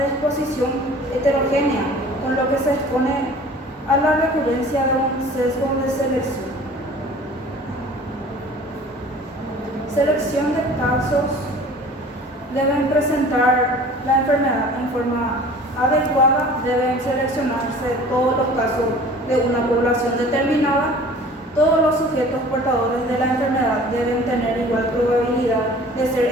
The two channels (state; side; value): normal; both; correlation 0.46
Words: exposición heterogénea, con lo que se expone a la recurrencia de un sesgo de selección. Selección de casos. Deben presentar la enfermedad en forma adecuada, deben seleccionarse todos los casos de una población determinada. Todos los sujetos portadores de la enfermedad deben tener igual probabilidad de ser